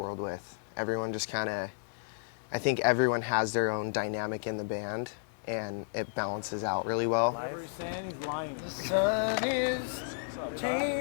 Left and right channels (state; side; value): silent; right; digital silence